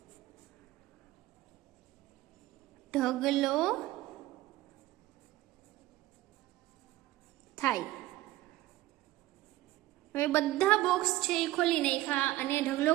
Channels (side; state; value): left; quieter; 16.6 dB